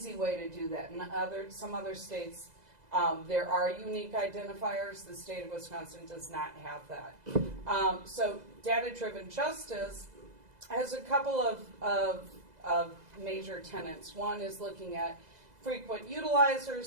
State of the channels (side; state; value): left; late; 2.0 ms